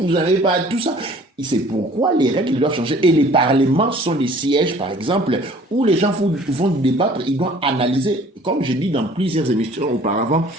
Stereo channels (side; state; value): both; normal; correlation 0.52